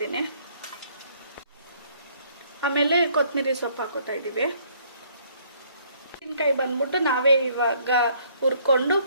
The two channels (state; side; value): inverted; both; correlation -0.63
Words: ಆಮೇಲೆ ಕೊತ್ತಂಬರಿ ಸೊಪ್ಪು ಹಾಕೋತಾ ಇದ್ದೀವಿ. ಮೆಣಸಿನ್ಕಾಯಿ ಬಂದ್ಬಿಟ್ಟು ನಾವೇ ಇವಾಗ ಹುರ್ಕೊಂಡು